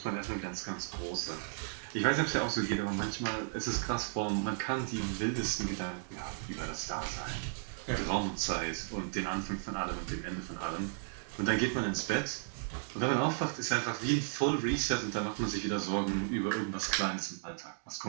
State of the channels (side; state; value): left; silent; digital silence